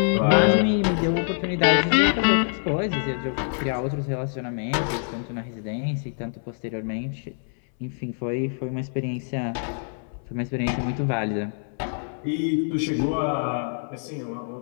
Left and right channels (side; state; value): right; silent; 61 dB below the other